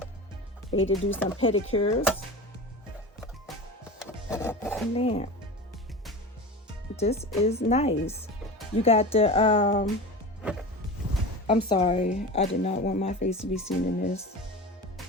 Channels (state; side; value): normal; both; correlation 0.30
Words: Ready to do some pedicures. Man, this is nice. You got the I'm sorry, I did not want my face to be seen in this.